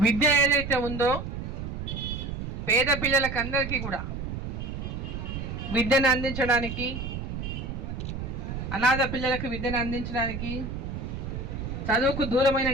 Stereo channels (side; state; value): right; noise; rumble, 6 dB below the sound